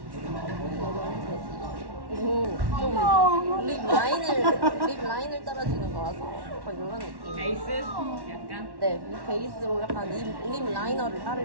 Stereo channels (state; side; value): late; left; 1.1 ms